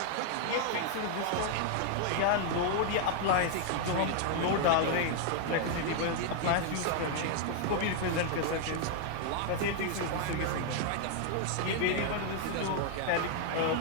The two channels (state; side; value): different; both; correlation 0.00